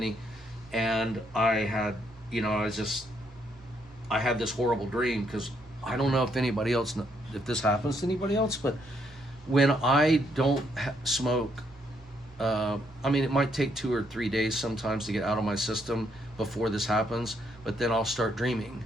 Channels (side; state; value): both; normal; correlation 0.73